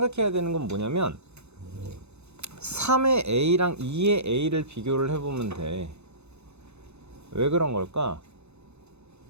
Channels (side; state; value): left; late; 0.81 ms